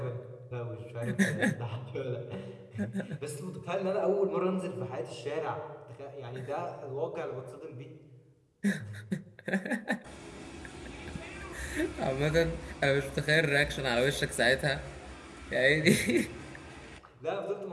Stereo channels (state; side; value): identical; both; correlation 1.00